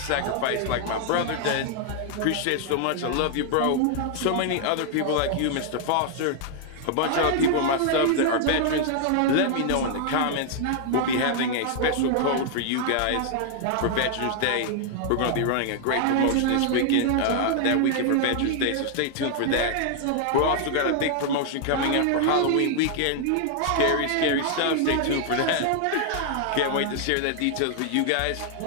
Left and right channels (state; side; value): different; both; correlation 0.00